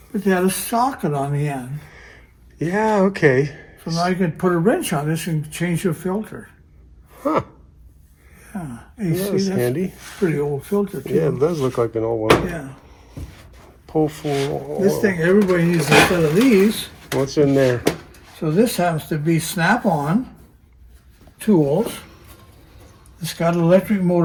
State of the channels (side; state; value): both; identical; correlation 1.00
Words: but they had a socket on the end. Yeah, okay. So now you can put a wrench on this and change your filter. Huh. Yeah. You see, That's handy. Pretty old filter, too. Yeah, it does look like an old one. Yeah. Pull full oil. This thing, everybody needs a set of these. What's in there? So this happens to be snap-on tools. It's got an electric